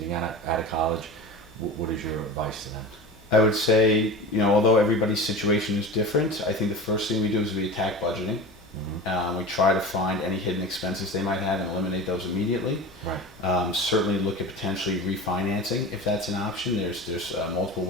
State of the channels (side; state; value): both; normal; correlation 0.31